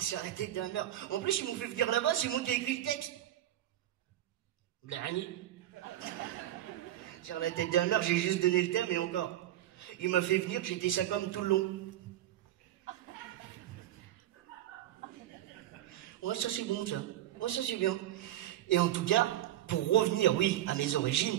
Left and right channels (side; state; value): left; quieter; 12.9 dB